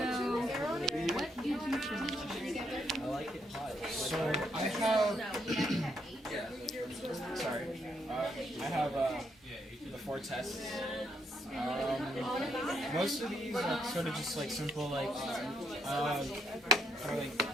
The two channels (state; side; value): normal; both; correlation 0.74